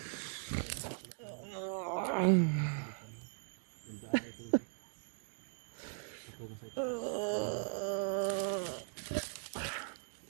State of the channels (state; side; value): silent; left; digital silence